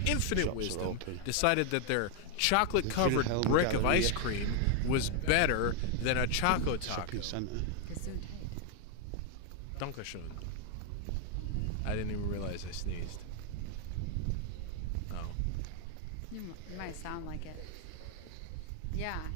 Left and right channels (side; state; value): both; different; correlation 0.00